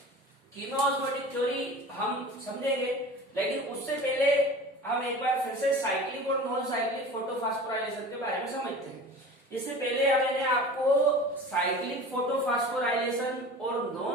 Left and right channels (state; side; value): normal; both; correlation 0.38